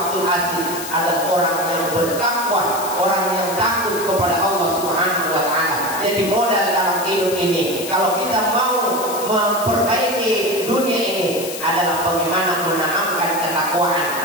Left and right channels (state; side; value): noise; left; hiss, 9 dB below the sound